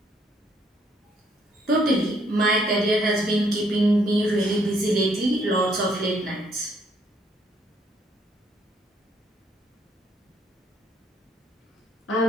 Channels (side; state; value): both; normal; correlation 0.68